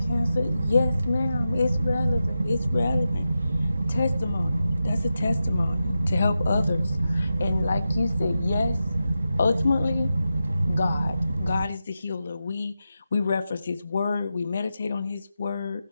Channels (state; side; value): inverted; both; correlation -0.90